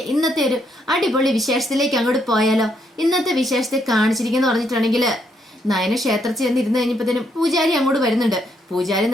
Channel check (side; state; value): both; normal; correlation 0.75